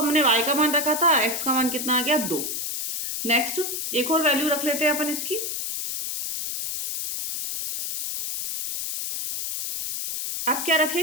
y का मान रखा था, x का मान कितना आ गया 2। नेक्स्ट एक और वैल्यू रख लेते हैं अपन इसकी, अब क्या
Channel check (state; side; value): noise; left; hiss, 4 dB below the sound